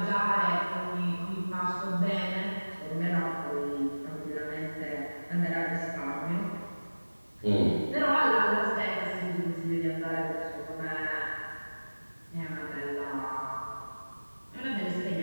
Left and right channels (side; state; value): both; inverted; correlation -1.00